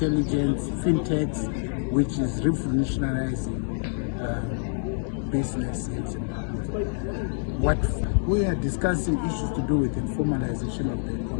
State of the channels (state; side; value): silent; right; digital silence